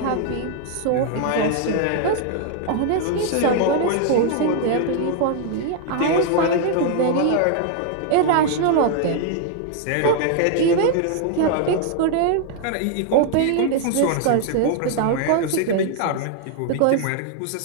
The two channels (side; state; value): both; different; correlation -0.01